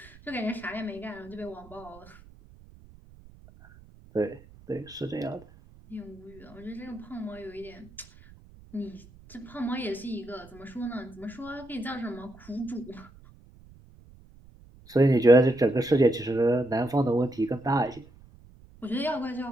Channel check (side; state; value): right; noise; rumble, 23 dB below the sound